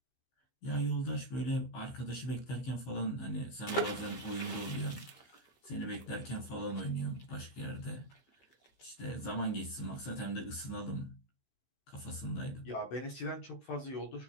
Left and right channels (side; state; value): right; late; 15 ms